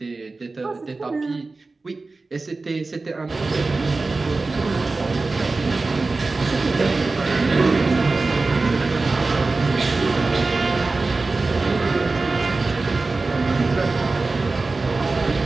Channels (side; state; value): left; quieter; 3.6 dB